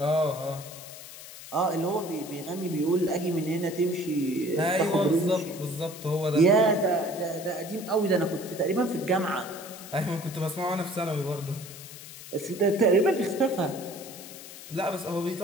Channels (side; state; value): left; noise; hiss, 14 dB below the sound